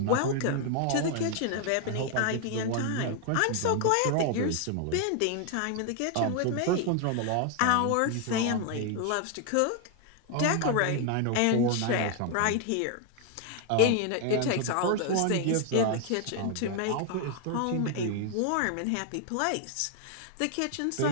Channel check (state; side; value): different; both; correlation 0.00